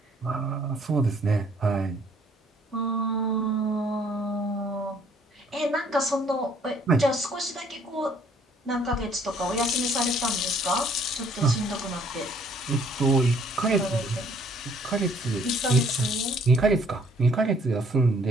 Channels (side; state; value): both; normal; correlation 0.62